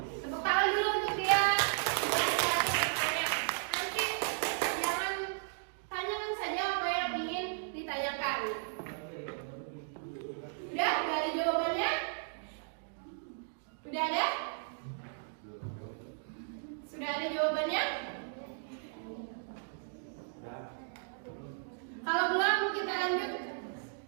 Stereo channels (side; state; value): left; silent; digital silence